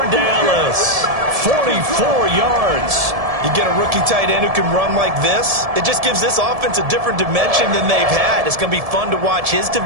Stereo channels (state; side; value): late; left; 1.7 ms